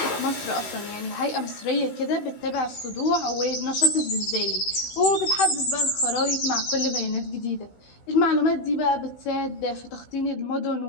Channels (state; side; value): late; right; 16 ms